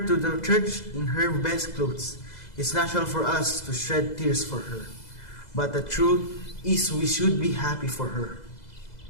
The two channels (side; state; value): right; late; 2.0 ms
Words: to the church in her best clothes. It's natural for us to shed tears for her, but the truth is we should be happy for her.